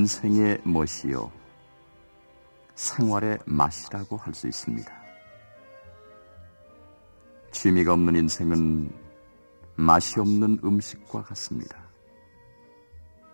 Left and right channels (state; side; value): inverted; both; correlation -1.00